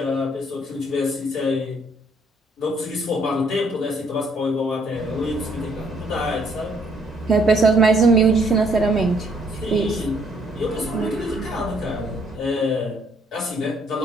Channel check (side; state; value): both; normal; correlation 0.67